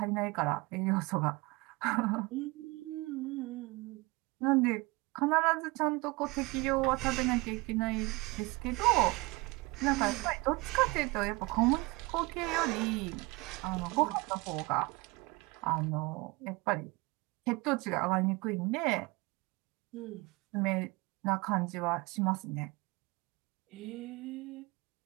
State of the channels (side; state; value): left; quieter; 24.4 dB